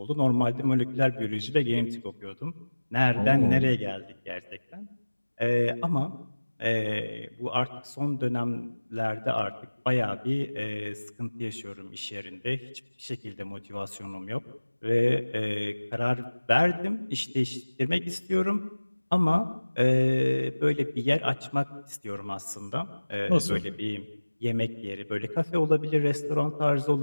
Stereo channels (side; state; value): both; inverted; correlation -1.00